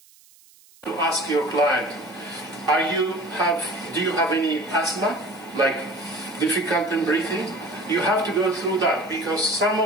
Ask your client, do you have any asthma, like difficult in breathing? You have to go through that because some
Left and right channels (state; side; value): noise; right; hiss, 27 dB below the sound